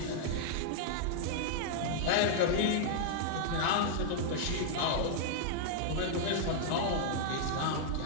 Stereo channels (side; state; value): both; different; correlation -0.01